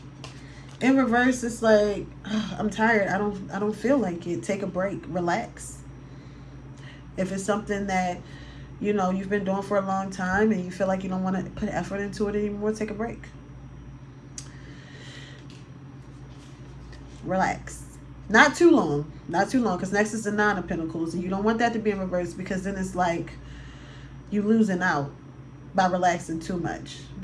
In reverse, it's like, I'm tired. I don't feel like it. Take a break. Relax. If it's something that, you know, you've been doing for a long time and you feel like you don't want to put effort into it anymore, take a break. Relax. Not too long. Not too long, because next is the Nine of Pentacles, and you don't want that to be in reverse, because then it's like you losing out by relaxing too much.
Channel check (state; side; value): identical; both; correlation 1.00